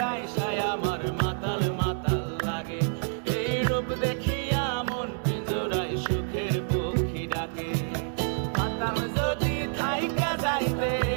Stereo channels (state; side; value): silent; left; 59 dB below the other